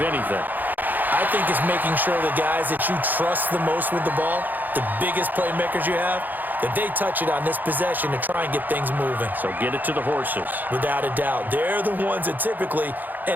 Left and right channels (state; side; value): late; left; 0.085 ms